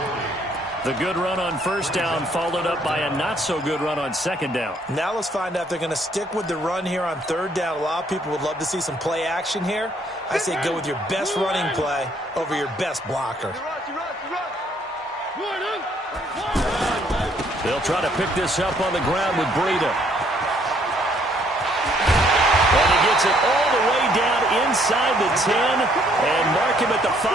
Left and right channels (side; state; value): both; normal; correlation 0.66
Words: The good run on 1st down followed up by a not-so-good run on 2nd down. Now let's find out if they're going to stick with the run here on 3rd down. A lot of people would love to see some play action here. I say go with your best running play over your best blocker. They'll try to pick this up on the ground with Breida. And he gets it all the way inside the 10 and mark him at the